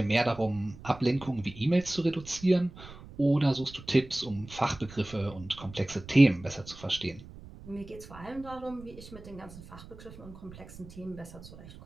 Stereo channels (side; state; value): right; noise; rumble, 17 dB below the sound